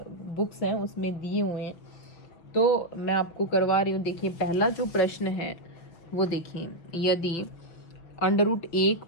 बुक्स हैं उसमें दिए हुए हैं, तो मैं आपको करवा रही हूँ। देखिए, पहला जो प्रश्न है वो देखिए, यदि √1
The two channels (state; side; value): late; right; 6.0 ms